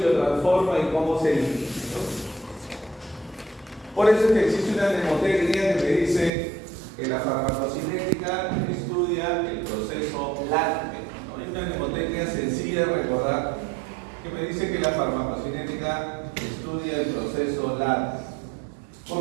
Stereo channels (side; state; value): left; drops out; at 6.3 s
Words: transforma y cómo se elimina, ¿no? Por eso es que existe una mnemotecnia que me dice que la farmacocinética estudia el proceso LATME, ¿no? Es una mnemotecnia sencilla de recordar que me dice que la farmacocinética estudia el proceso LATME.